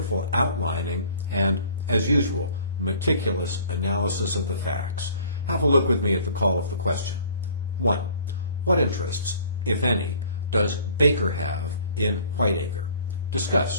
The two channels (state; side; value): inverted; both; correlation -0.52